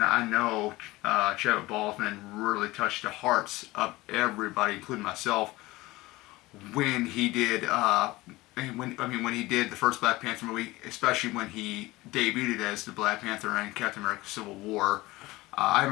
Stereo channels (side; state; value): right; quieter; 19.9 dB